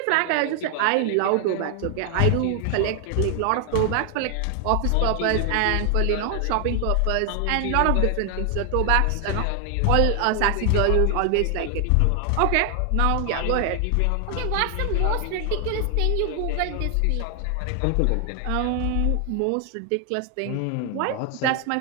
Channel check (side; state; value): both; different; correlation 0.00